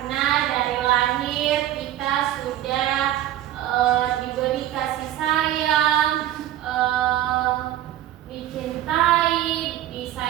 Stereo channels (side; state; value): left; quieter; 13.0 dB